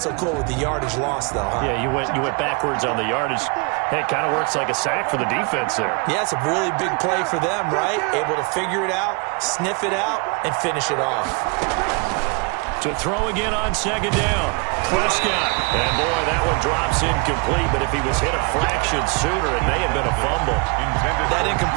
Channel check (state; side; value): quieter; left; 32.5 dB